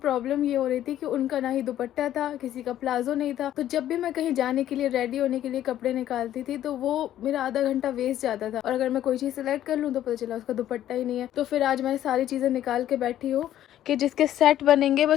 ये हो रही थी कि उनका ना ही दुपट्टा था, किसी का प्लाजो नहीं था। तो जब भी मैं कहीं जाने के लिए रेडी होने के लिए कपड़े निकालती थी तो वो मेरा आधा घंटा वेस्ट जाता था, और अगर मैं कोई चीज सिलेक्ट कर लूँ तो पता चला उसका दुपट्टा ही नहीं है। तो फिर आज मैं सारी चीजें निकाल के बैठी हूँ कि जिसके सेट बनेंगे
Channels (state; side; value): quieter; right; 12.1 dB